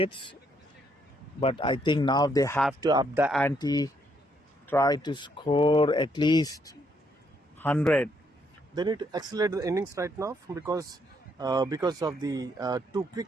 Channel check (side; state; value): both; normal; correlation 0.72